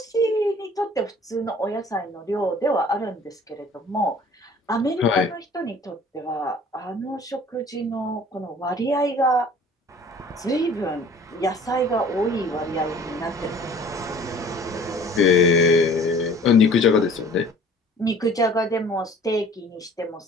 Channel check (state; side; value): normal; both; correlation 0.50